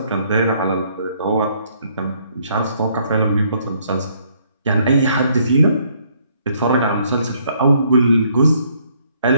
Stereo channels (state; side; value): inverted; both; correlation -0.67